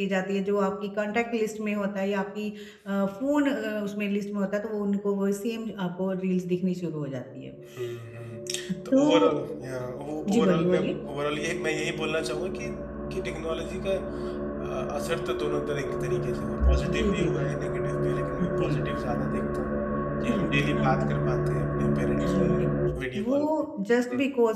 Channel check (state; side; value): identical; both; correlation 1.00